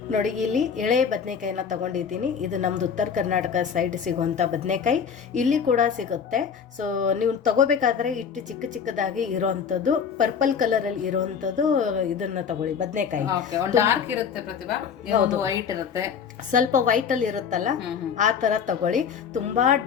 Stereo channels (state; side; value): quieter; right; 7.0 dB